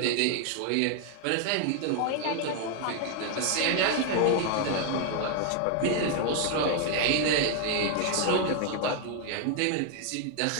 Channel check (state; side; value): different; both; correlation 0.01